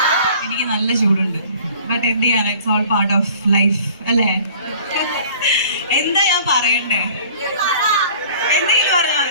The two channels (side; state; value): both; inverted; correlation -0.49